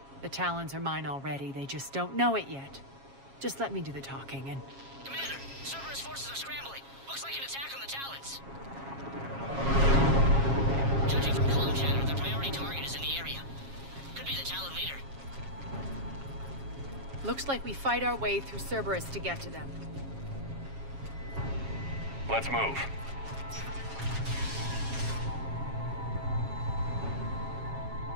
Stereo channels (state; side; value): late; left; 7.3 ms